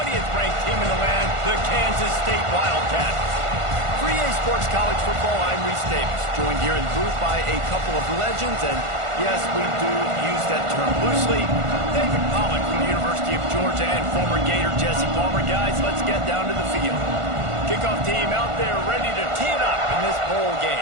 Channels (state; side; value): late; left; 1.5 ms